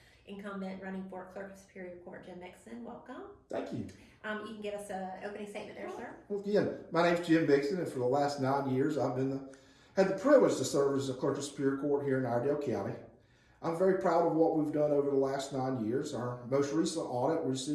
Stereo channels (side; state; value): both; identical; correlation 1.00